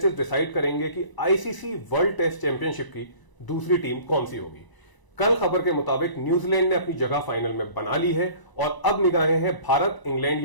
डिसाइड करेंगे कि आईसीसी वर्ल्ड टेस्ट चैंपियनशिप की दूसरी टीम कौन सी होगी। कल खबर के मुताबिक न्यूजीलैंड ने अपनी जगह फाइनल में बना ली है और अब निगाहें हैं भारत, इंग्लैंड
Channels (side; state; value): right; late; 1.0 ms